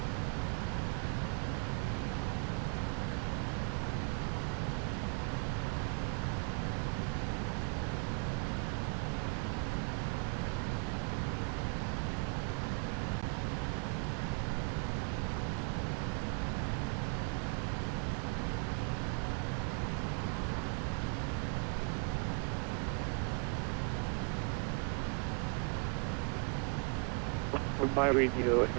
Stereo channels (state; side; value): quieter; left; 34.4 dB